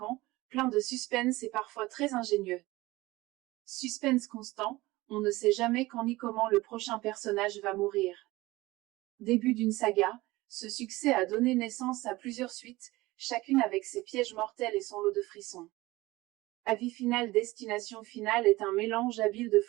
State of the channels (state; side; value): quieter; left; 19.8 dB